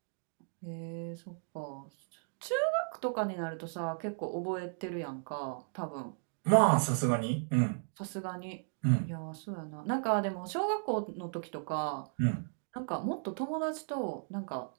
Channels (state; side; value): silent; left; digital silence